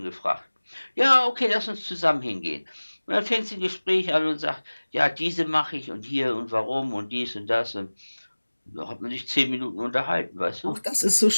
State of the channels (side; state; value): both; inverted; correlation -1.00